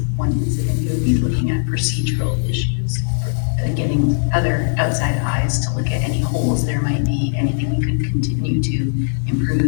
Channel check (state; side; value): silent; right; 59 dB below the other